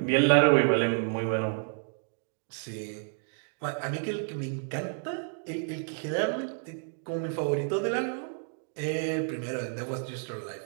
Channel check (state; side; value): silent; left; 58 dB below the other